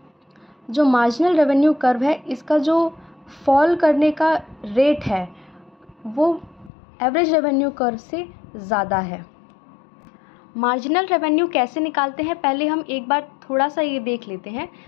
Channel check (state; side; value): drops out; right; at 6.7 s